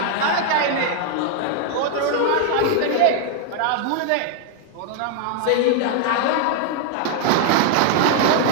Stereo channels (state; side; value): different; both; correlation 0.00